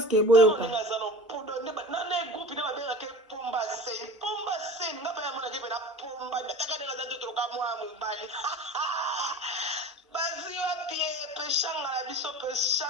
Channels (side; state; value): both; normal; correlation 0.37